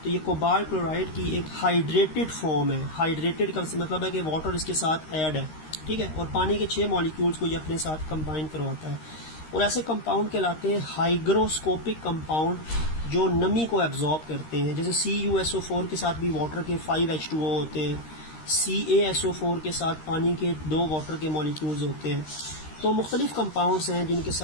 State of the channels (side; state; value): right; late; 13 ms